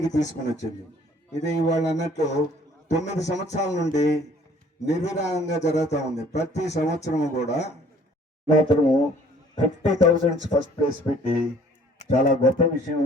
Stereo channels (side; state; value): both; normal; correlation 0.56